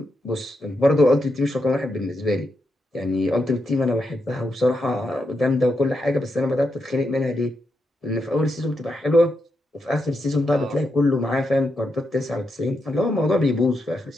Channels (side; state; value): both; normal; correlation 0.83